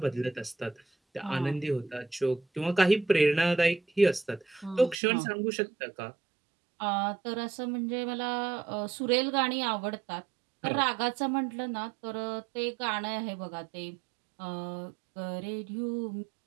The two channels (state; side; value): drops out; left; at 5.0 s